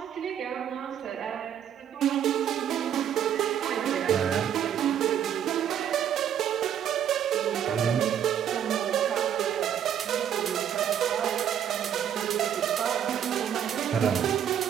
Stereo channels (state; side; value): quieter; left; 9.4 dB